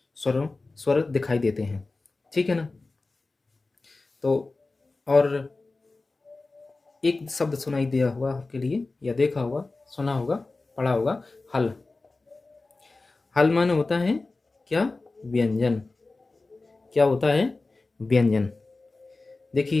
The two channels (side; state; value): right; quieter; 3.4 dB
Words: स्वर दिखाई देते हैं, ठीक है ना। तो और एक शब्द सुनाई दिया हुआ आपके लिए, या देखा होगा, सुना होगा, पढ़ा होगा, हल। हल माने होता है क्या? व्यंजन। क्या होता है? व्यंजन।